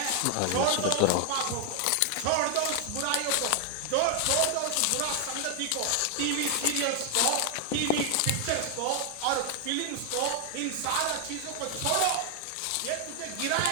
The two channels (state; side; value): different; both; correlation 0.00